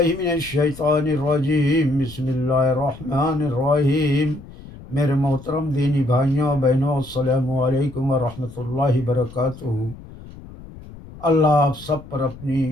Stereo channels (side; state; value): left; noise; rumble, 17 dB below the sound